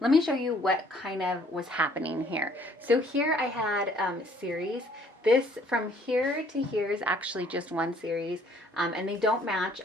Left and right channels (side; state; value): both; normal; correlation 0.60